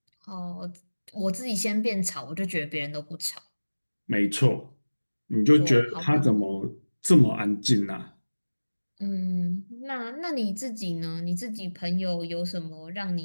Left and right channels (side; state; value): both; inverted; correlation -1.00